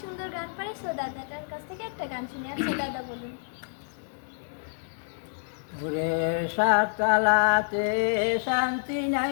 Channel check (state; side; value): silent; right; digital silence